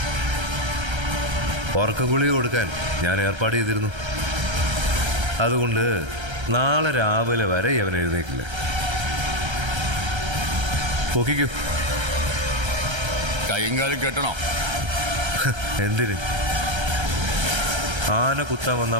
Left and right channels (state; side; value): late; left; 1.3 ms